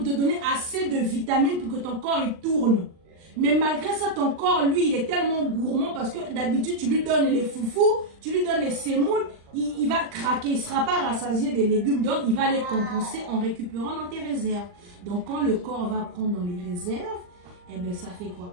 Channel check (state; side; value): late; left; 39 ms